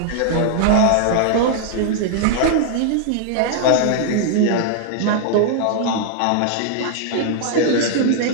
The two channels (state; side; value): different; both; correlation -0.01